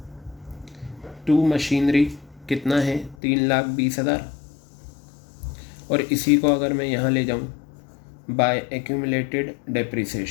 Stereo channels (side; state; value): right; drops out; at 3.2 s